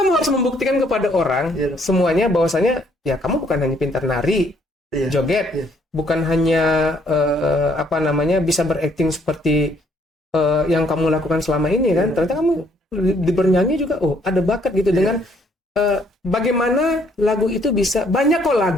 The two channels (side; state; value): both; normal; correlation 0.66